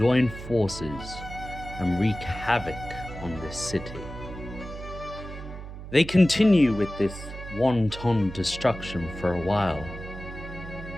forces and wreak havoc on this city. They continue with this wanton destruction for a while,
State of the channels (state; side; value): noise; right; hum, 11 dB below the sound